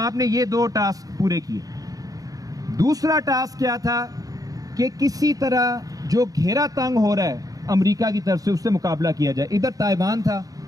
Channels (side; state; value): left; late; 0.17 ms